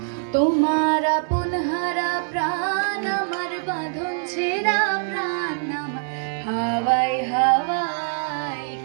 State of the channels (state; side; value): silent; left; 63 dB below the other